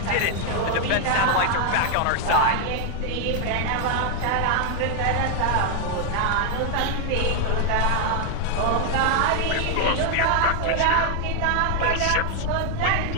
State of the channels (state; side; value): different; both; correlation 0.00